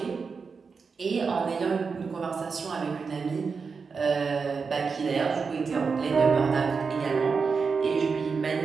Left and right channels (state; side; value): quieter; left; 5.1 dB